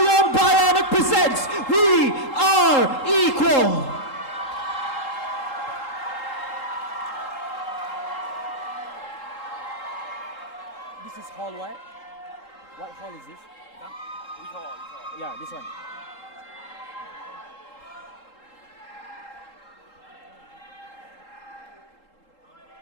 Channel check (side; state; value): right; late; 3.8 ms